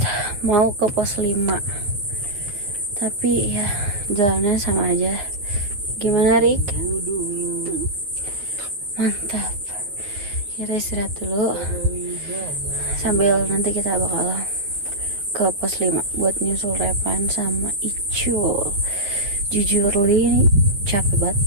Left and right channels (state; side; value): late; left; 9.4 ms